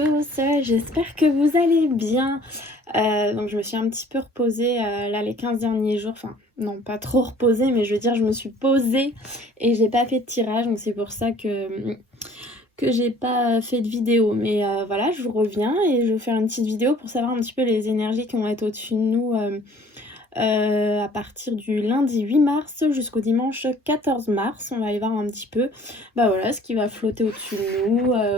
j'espère que vous allez bien. Donc je me suis un petit peu reposée là les 15 derniers jours, enfin non pas trop reposée, mais je veux dire je me suis posée et j'ai pas fait de tirage, donc c'est pour ça que j'ai pas fait de vidéo. Mais voilà, je vous reviens et je vais vous faire une petite vidéo pour savoir un petit peu les énergies qui vont être au-dessus de nous à partir du lundi 8 mars jusqu'au dimanche 14 mars. On va aller voir un petit peu bah voilà, ce qui va flotter au-dessus de nous,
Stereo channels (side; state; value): both; normal; correlation 0.53